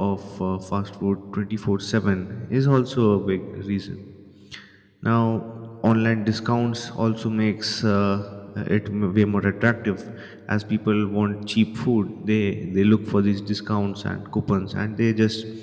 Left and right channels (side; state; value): both; identical; correlation 1.00